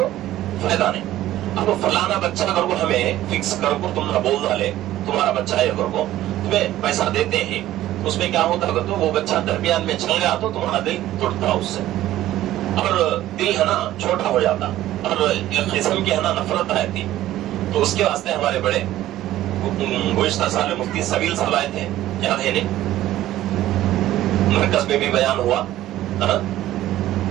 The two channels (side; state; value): left; quieter; 14.2 dB